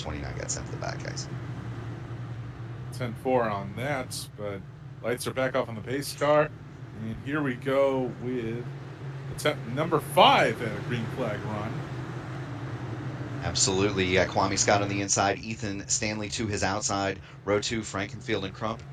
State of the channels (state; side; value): identical; both; correlation 1.00